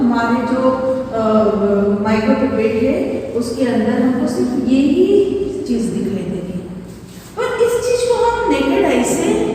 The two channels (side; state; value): both; identical; correlation 1.00